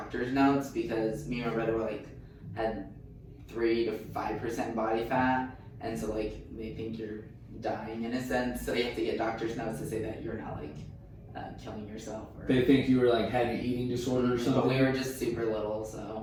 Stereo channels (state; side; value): identical; both; correlation 1.00